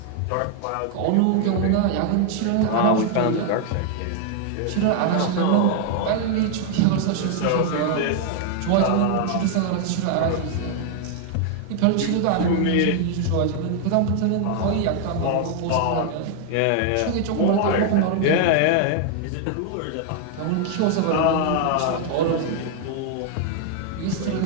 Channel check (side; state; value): both; different; correlation 0.00